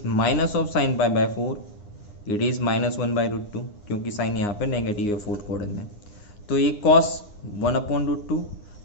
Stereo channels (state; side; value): late; right; 9.7 ms